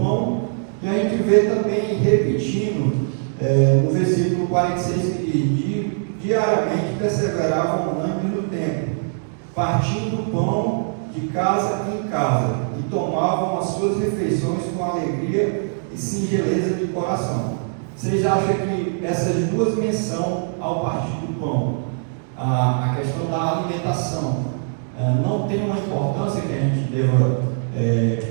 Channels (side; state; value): left; silent; digital silence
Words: e a gente vê também repetindo no versículo 46, que diariamente perseveravam unânimes no templo, partindo o pão de casa em casa, e tomavam as suas refeições com alegria e singeleza de coração. Vocês acham que essas duas menções ao partir do pão, a questão da alimentação, não tem uma importância que a gente deva